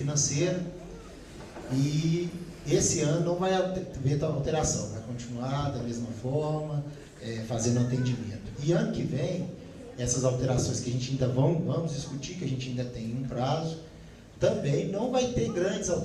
e esse ano não vai haver alteração, vai continuar da mesma forma, fazendo atendimento. E ano que vem, essas alterações que a gente ainda vamos discutir, que a gente ainda tem um prazo, também não vai ter grandes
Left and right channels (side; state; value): both; identical; correlation 1.00